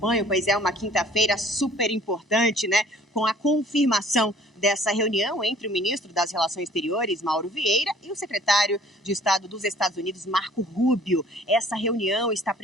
Pois é, uma quinta-feira super importante, né? Com a confirmação dessa reunião entre o ministro das Relações Exteriores, Mauro Vieira, e o secretário de Estado dos Estados Unidos, Marco Rubio. Essa reunião está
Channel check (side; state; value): both; normal; correlation 0.54